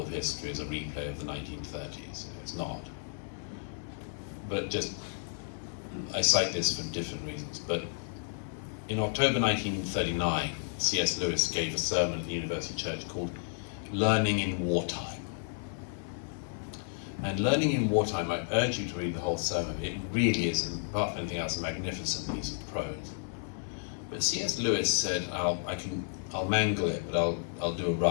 of history is a replay of the 1930s. It's not. But just, I cite this for different reasons. But in October 1939, C.S. Lewis gave a sermon at the University Church called Learning in Wartime. And Learning in Wartime, I urge you to read the whole sermon. It really is, apart from anything else, a magnificent piece of prose. But C.S. Lewis said, I'll mangle it, but I'll do a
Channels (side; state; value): right; silent; digital silence